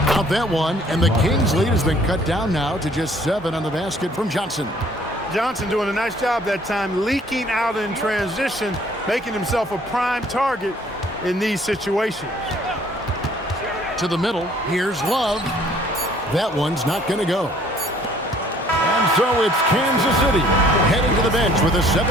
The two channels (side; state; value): both; normal; correlation 0.58